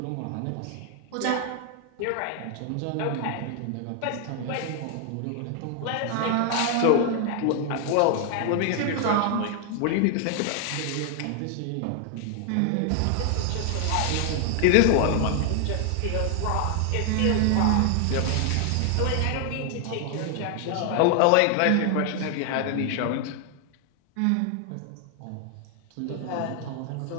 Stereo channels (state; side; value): different; both; correlation 0.00